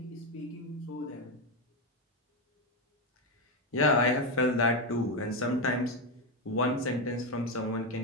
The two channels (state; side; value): normal; both; correlation 0.08